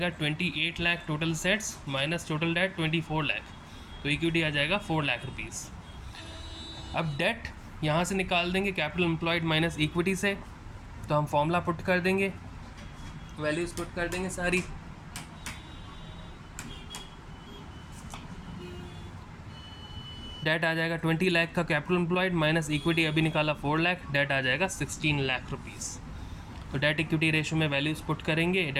28 lakh total assets minus total debt 24 lakh, तो इक्विटी आ जाएगा 4 लाख रुपीज़। अब डेट यहाँ से निकाल देंगे कैपिटल एम्प्लॉयड माइनस इक्विटी से, तो हम फॉर्मूला पुट कर देंगे, वैल्यूज़ पुट कर देंगे सारी। डेट आ जाएगा 20 लाख का कैपिटल एम्प्लॉयड माइनस इक्विटी अभी निकाला 4 लाख, डेट आ जाएगा 16 लाख रुपीज़। तो डेट इक्विटी रेशियो में वैल्यूज़ पुट करेंगे,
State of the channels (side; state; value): both; identical; correlation 1.00